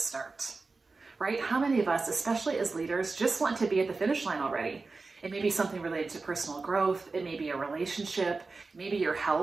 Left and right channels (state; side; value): quieter; left; 3.9 dB